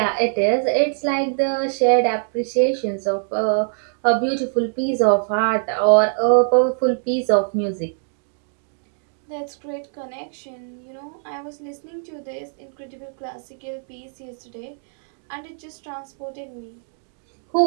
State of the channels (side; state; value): left; silent; digital silence